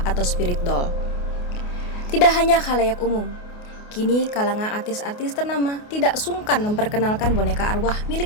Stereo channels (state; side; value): late; right; 28 ms